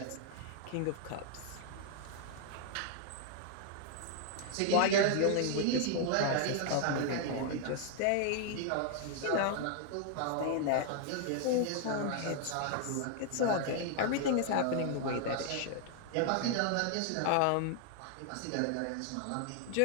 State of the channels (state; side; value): different; both; correlation 0.00